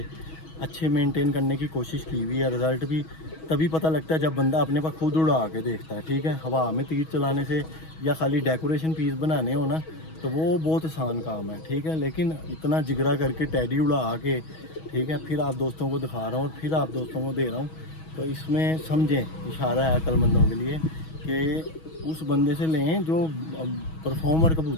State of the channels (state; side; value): late; right; 6.2 ms